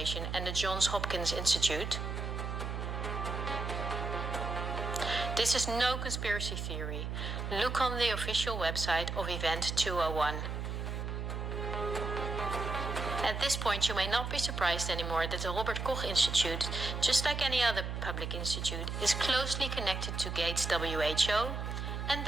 and the Johns Hopkins Institute? This is no conspiracy theory. Look on the official website of Event 201. At this point, you may not be surprised anymore that the Robert Koch Institute, just like any other public institute, is closely connected to Gates WHO, and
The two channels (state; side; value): noise; right; hum, 4 dB below the sound